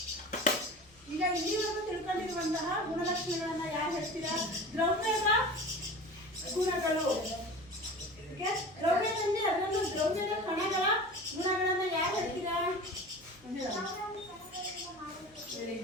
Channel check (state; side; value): noise; left; hum, 29 dB below the sound